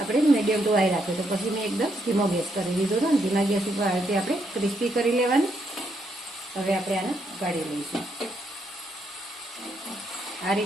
મીડિયમ ટુ હાઈ રાખ્યો. તો પછી મેં એકદમ ધીમો ગેસ કરી દીધો હતો. ધીમા ગેસ ઉપર આ રીતે આપણે ક્રિસ્પી કરી લેવાની. હવે આપણે આને કાઢી લઈશું. આ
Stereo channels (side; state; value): both; normal; correlation 0.77